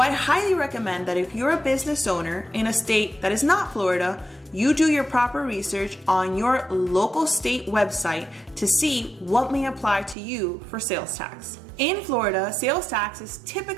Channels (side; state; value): left; drops out; at 10.2 s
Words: highly recommend that if you're a business owner in a state that is not Florida, you do your proper research on your local state website to see what may apply to you for sales tax. In Florida, sales tax is